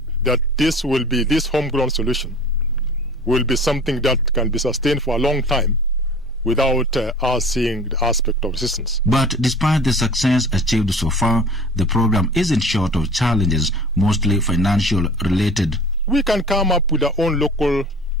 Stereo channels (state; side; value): normal; both; correlation 0.43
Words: that this homegrown solution will be something that can be sustained for a long time without us seeing the aspect of resistance. But despite the success achieved so far, the program isn't short of challenges, mostly financial related. We can come up with our own local